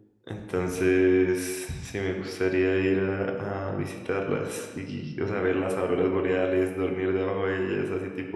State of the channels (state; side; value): identical; both; correlation 1.00